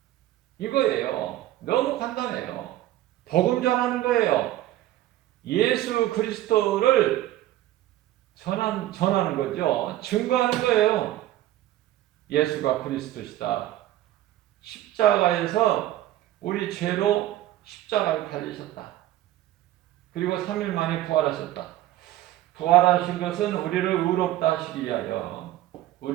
이거예요. 너무 간단해요. 복음 전하는 거예요. 예수 그리스도를 전하는 거죠. 증거하는 거예요. 예수가 그리스도시다. 십자가에서 우리 죄로 십자가에 달리셨다. 그리고 3일 만에 부활하셨다. 부활하신 것은 우리를 의롭다 하시기 위하여,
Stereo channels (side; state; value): left; quieter; 14.2 dB